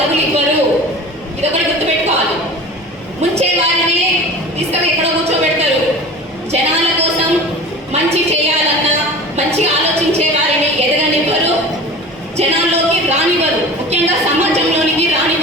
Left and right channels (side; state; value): both; normal; correlation 0.37